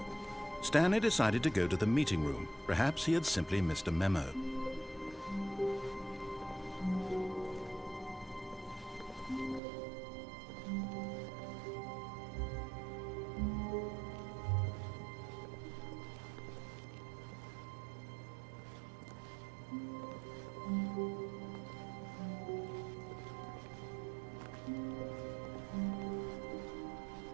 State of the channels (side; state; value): left; drops out; at 9.6 s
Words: Stanley decided to go to the meeting room. Perhaps he had simply missed a memo.